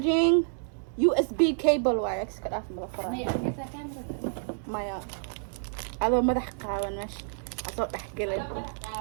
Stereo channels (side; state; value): left; silent; digital silence